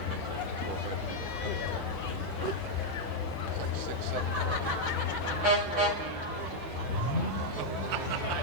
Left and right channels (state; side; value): normal; both; correlation -0.01